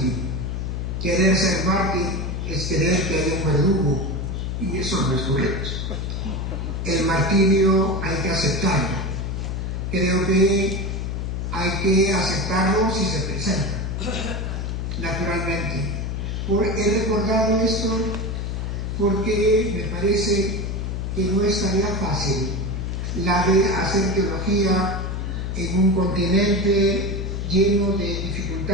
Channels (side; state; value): left; noise; hum, 3 dB below the sound